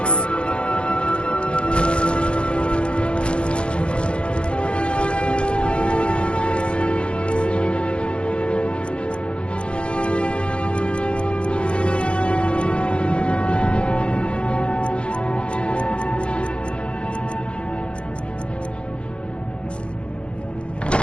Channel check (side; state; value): right; late; 0.058 ms